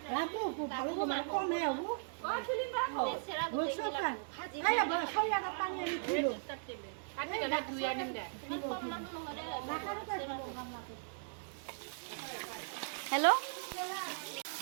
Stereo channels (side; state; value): left; silent; digital silence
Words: ভালো মানে কমে হবো বলছো খাই আবার খাই আর পানি আনি ছিল হেল্ল'